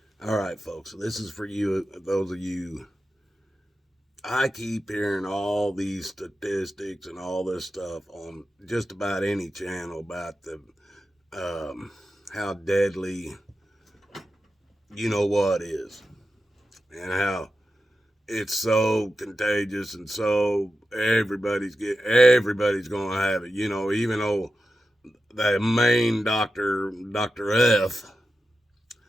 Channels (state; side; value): normal; both; correlation 0.91